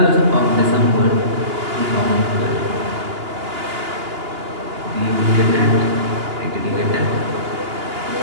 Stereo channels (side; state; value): left; late; 2.9 ms